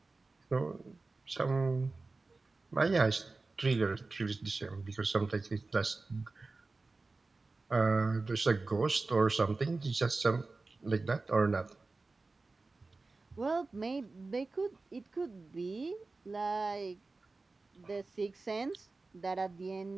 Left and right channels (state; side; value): quieter; left; 3.6 dB